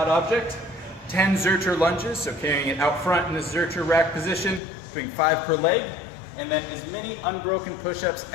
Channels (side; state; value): right; drops out; at 4.6 s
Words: object, 10 Zercher lunges, so carrying it out front in this Zercher rack position, doing 5 per leg, and then as many unbroken push-ups